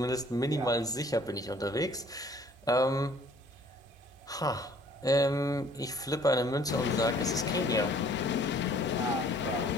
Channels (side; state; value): both; normal; correlation 0.57